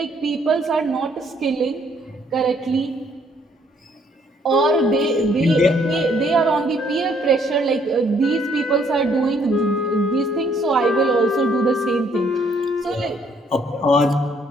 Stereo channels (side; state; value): both; normal; correlation 0.67